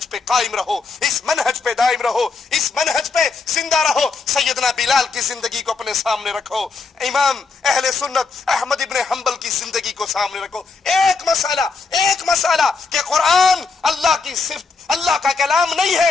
پہ قائم رہو، اس منہج پہ دائم رہو، اس منہج پہ زندہ رہو۔ سیدنا بلال کی زندگی کو اپنے سامنے رکھو، امام اہل سنت احمد ابن حنبل کی زندگی کو سامنے رکھو۔ ایک مسئلہ کہ قرآن اللہ کی صفت، اللہ کا کلام نہیں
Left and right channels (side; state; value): right; quieter; 4.5 dB